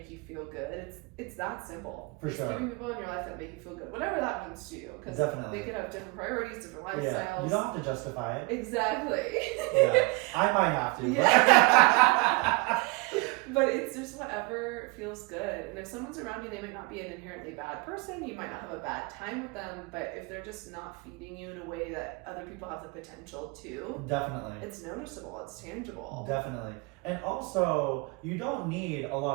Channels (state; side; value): quieter; left; 27.0 dB